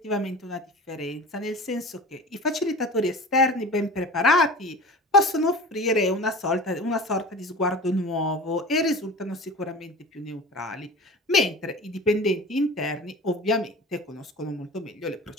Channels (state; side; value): normal; both; correlation 0.36